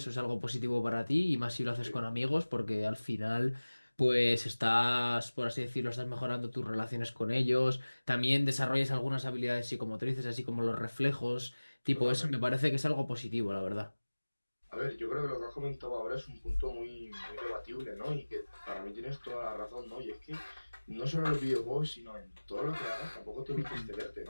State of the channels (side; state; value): both; inverted; correlation -1.00